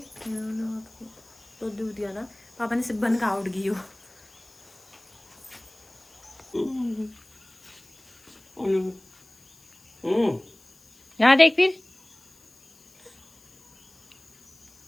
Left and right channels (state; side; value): noise; left; hiss, 30 dB below the sound